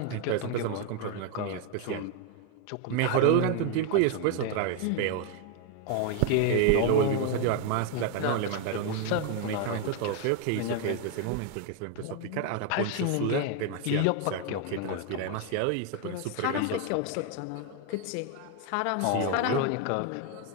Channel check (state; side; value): different; both; correlation 0.01